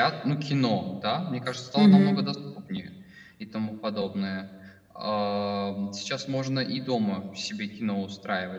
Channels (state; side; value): identical; both; correlation 1.00